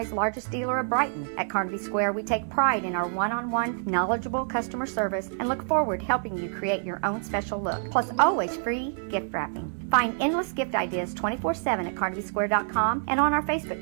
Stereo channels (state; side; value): silent; left; digital silence